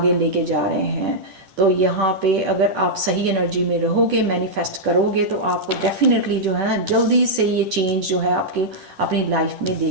लेके जा रहे हैं। तो यहाँ पे अगर आप सही एनर्जी में रहोगे, मैनिफेस्ट करोगे, तो आपको डेफिनेटली जो है ना जल्दी से ये चेंज जो है आपके अपनी लाइफ में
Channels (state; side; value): late; left; 11 ms